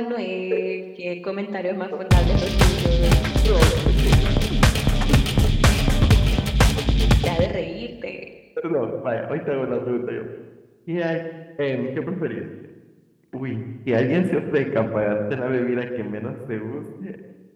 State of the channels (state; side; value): identical; both; correlation 1.00